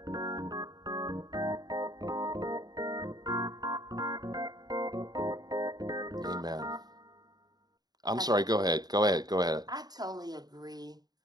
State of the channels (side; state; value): left; late; 0.19 ms